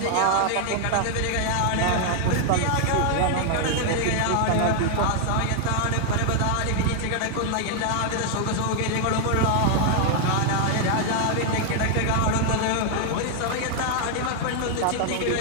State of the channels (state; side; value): different; both; correlation 0.00